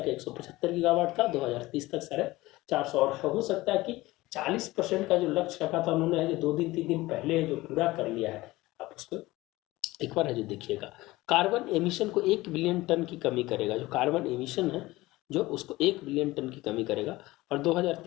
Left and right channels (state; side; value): quieter; right; 19.2 dB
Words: 175 गीगावाट था, 2030 तक 450 और हो सकता है कि 40% का जो लक्ष्य रखा था उन्होंने है जो 2 दिन 3 दिन पहले है जो पूरा कर लिया है। आप उसको एक बार है जो देखिएगा। कार्बन एमिशन को 1 बिलियन टन की कमी करेगा। जो कार्बन एमिशन है जो उसको 1 बिलियन टन की कमी करेगा। और